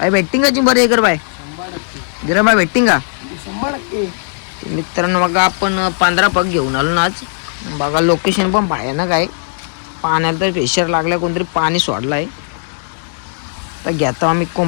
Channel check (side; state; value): right; silent; digital silence